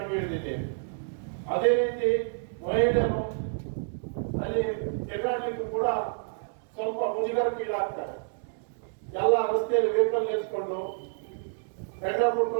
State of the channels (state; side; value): silent; left; digital silence